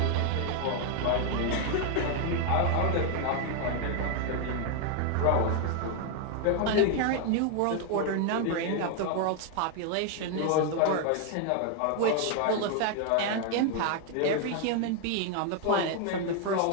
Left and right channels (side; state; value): both; different; correlation 0.00